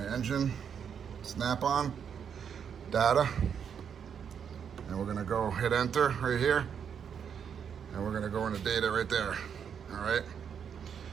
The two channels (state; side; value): quieter; left; 7.6 dB